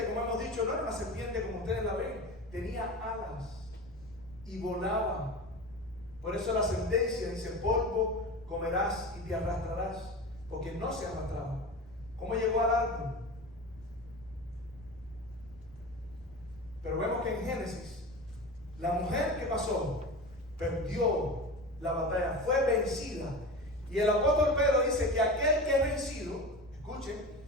como hemos dicho, no era una serpiente como ustedes la ven, tenía alas y volaba. Por eso la sentencia dice: polvo comerás y te arrastrarás, porque no se arrastraba. ¿Cómo llegó al árbol? Pero vemos que en Génesis, la mujer que pasó perdió la batalla, fue vencida. Y el apóstol Pedro dice que aquel que es vencido, escuchen,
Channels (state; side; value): noise; left; rumble, 22 dB below the sound